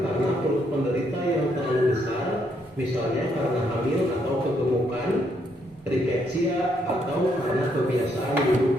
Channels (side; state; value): both; normal; correlation 0.74